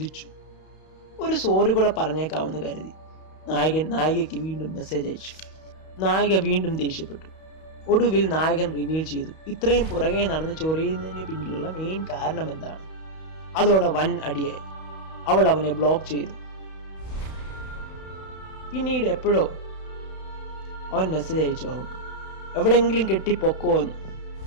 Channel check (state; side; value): late; right; 31 ms